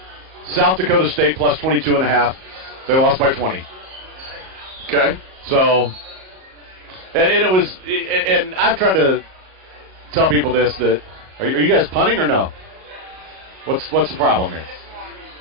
South Dakota State plus 22.5. They lost by 20. Okay. So, and it was, and I've tried to tell people this, that, are you guys punting or no? What's the problem here?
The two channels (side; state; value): left; late; 38 ms